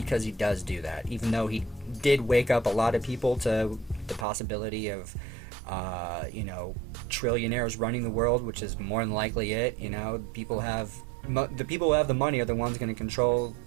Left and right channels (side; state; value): left; drops out; at 4.2 s